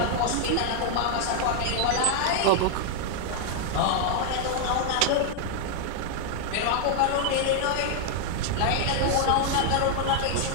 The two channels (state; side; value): different; both; correlation -0.01